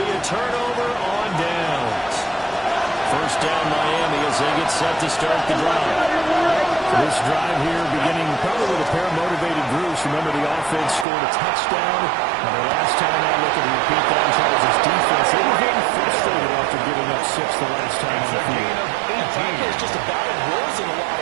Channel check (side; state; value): left; drops out; at 11.1 s